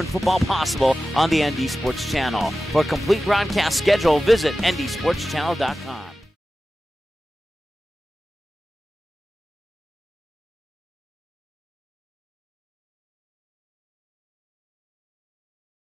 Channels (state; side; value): normal; both; correlation 0.95